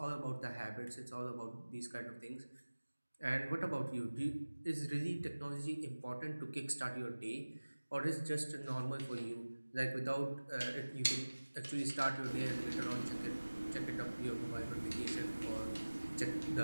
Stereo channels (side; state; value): both; inverted; correlation -1.00